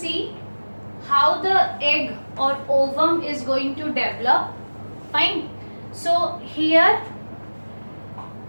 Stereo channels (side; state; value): both; inverted; correlation -1.00